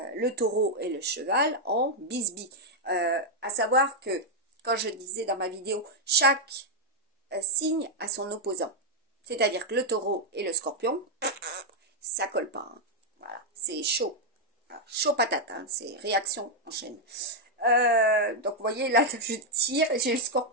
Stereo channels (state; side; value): normal; both; correlation -0.02